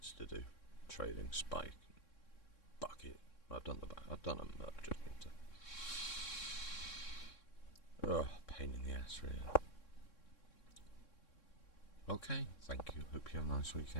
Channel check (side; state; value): right; late; 3.6 ms